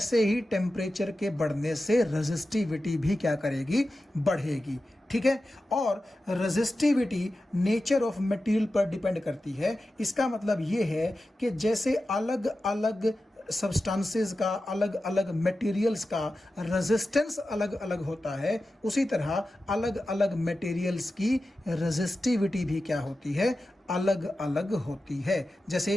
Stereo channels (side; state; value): both; normal; correlation 0.93